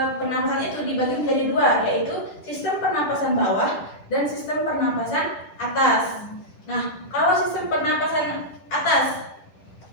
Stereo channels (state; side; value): late; right; 10 ms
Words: pernapasan itu dibagi menjadi 2, yaitu sistem pernapasan bawah dan sistem pernapasan atas. Nah, kalau sistem pernapasan atas